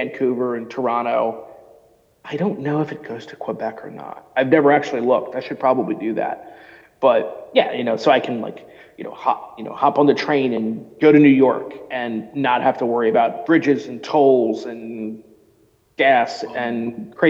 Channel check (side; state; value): both; identical; correlation 1.00